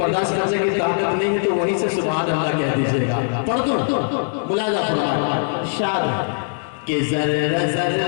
करने की ताकत नहीं है तो वहीं से सुभान अल्लाह कह दीजिएगा। पढ़ दो, मुलाहिजा फरमाएं। शाद के जर्रा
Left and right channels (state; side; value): silent; right; digital silence